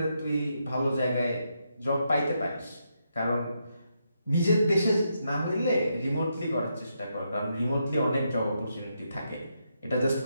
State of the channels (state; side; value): inverted; both; correlation -0.81